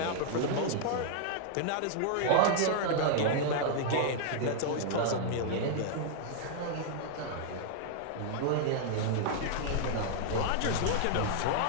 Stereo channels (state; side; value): different; both; correlation -0.01